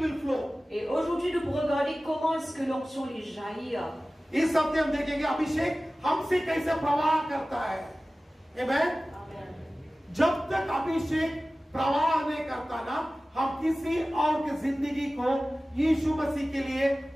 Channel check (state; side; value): normal; both; correlation 0.97